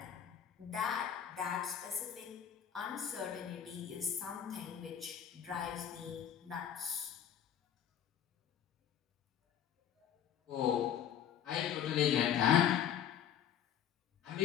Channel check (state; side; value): quieter; right; 9.4 dB